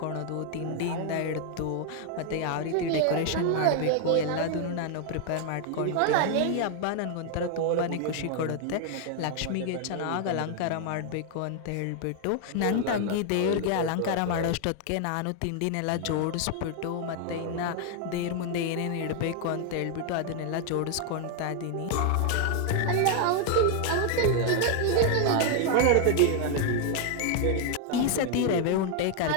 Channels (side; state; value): both; different; correlation 0.00